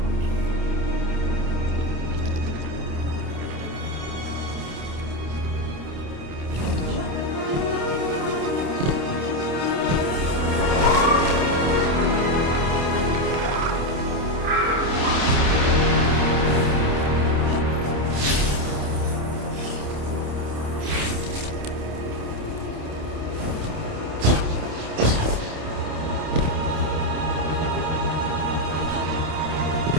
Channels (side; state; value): left; late; 28 ms